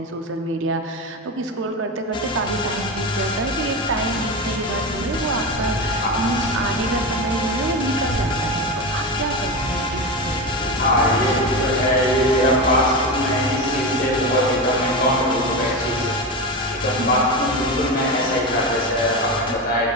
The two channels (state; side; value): normal; both; correlation 0.20